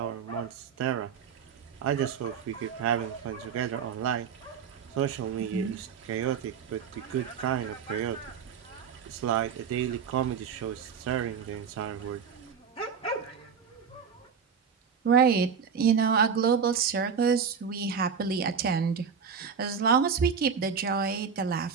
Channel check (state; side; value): quieter; left; 6.6 dB